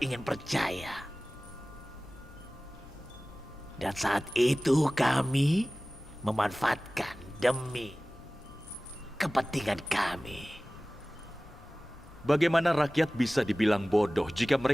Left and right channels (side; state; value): left; noise; rumble, 21 dB below the sound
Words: ingin percaya. Dan saat itu kami memanfaatkan demi kepentingan kami. Bagaimana rakyat bisa dibilang bodoh jika